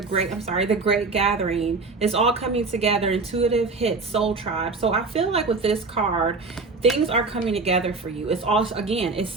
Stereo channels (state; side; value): quieter; left; 4.0 dB